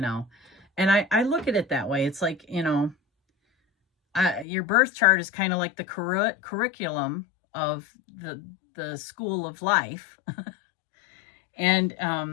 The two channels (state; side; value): drops out; right; at 4.5 s